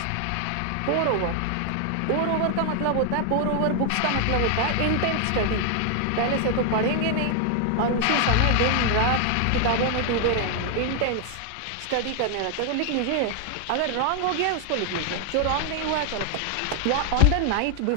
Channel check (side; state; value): both; different; correlation 0.00